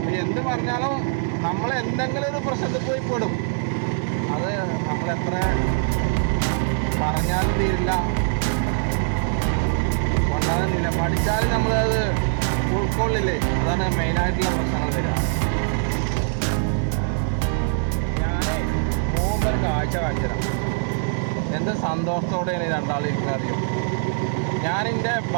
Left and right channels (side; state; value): left; silent; 63 dB below the other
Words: എന്ത് പറഞ്ഞാലും നമ്മൾ എന്തെങ്കിലും ഒരു പ്രശ്നത്തിൽ പോയി പെടും. അത് നമ്മളെത്ര പറഞ്ഞാലും തീരില്ല, കൊണ്ടാകുന്നില്ല. പഠിച്ചാലും നമ്മളത് ഉൾക്കൊള്ളില്ലേ. അതാണ് മെയിനായിട്ടുള്ള പ്രശ്നങ്ങൾ വരിക. ഞാൻ പോകുമ്പോൾ ഒരു കാഴ്ച കാണിച്ചുതരാം. എന്ത് സന്തോഷത്തോടെയാണ് രണ്ടാളിരിക്കുന്നത് അറിയും. ഞാനെൻ്റെ